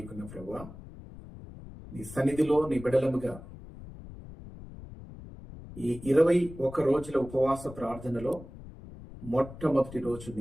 ప్రభువా, నీ సన్నిధిలో నీ బిడలముగా ఈ 21 రోజుల ఉపవాస ప్రార్థనలో మొట్టమొదటి రోజు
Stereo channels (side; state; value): left; noise; rumble, 15 dB below the sound